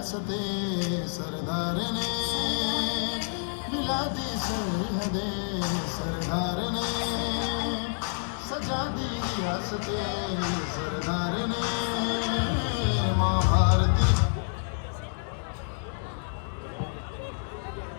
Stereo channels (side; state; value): right; silent; 59 dB below the other